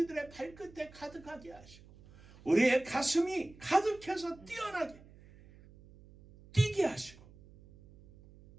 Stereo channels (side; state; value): right; noise; hum, 22 dB below the sound